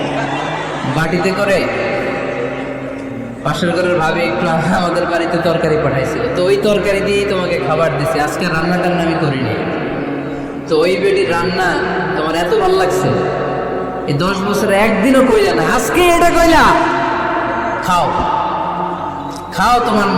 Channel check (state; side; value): identical; both; correlation 1.00